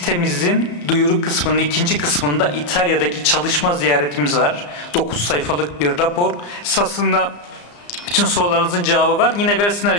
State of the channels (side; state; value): right; late; 34 ms